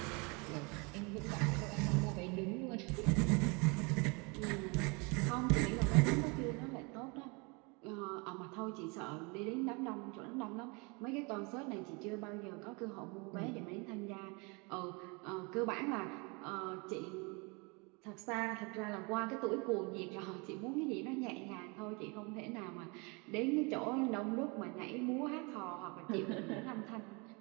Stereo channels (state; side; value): quieter; left; 29.9 dB